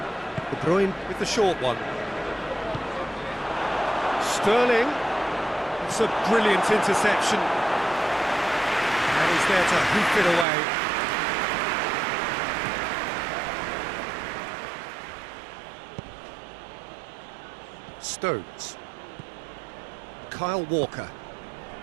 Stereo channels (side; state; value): left; drops out; at 10.5 s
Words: De Bruyne with the short one. Sterling. It's a brilliant interception. And he's there to hoof it away. Stones. Kyle Walker.